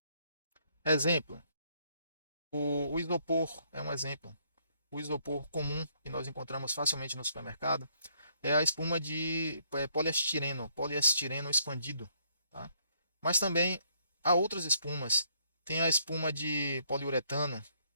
Exemplo: o isopor é um exemplo. O isopor comum que nós encontramos facilmente no supermercado é a espuma de poliestireno expandido. Tá? Mas também há outras espumas. Tem a espuma de poliuretano.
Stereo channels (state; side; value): inverted; both; correlation -0.69